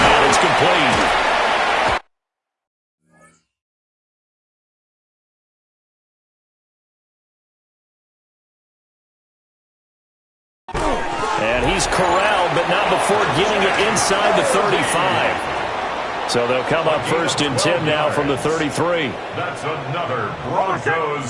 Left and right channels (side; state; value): both; identical; correlation 1.00